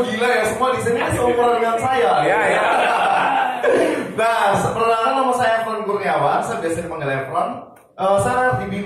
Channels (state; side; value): identical; both; correlation 1.00